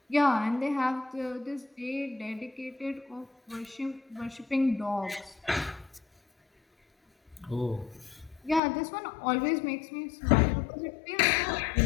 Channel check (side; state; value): right; drops out; at 8.6 s